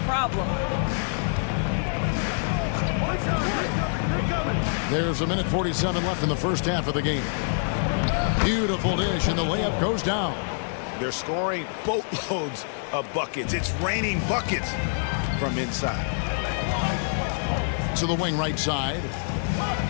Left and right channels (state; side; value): silent; right; 61 dB below the other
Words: There's 1:47 left in the first half of the game. Beautiful dish, and the layup goes down. They're scoring boatloads of buckets. It's raining buckets from inside. To the wing right side.